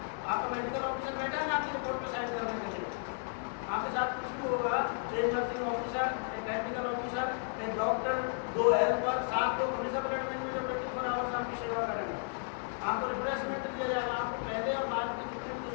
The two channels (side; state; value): right; silent; 55 dB below the other